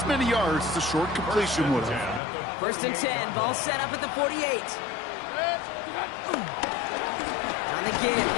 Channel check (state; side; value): drops out; right; at 2.2 s